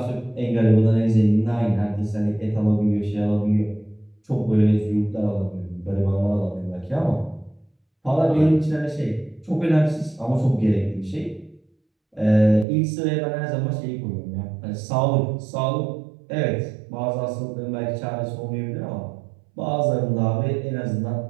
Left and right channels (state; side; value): drops out; left; at 12.7 s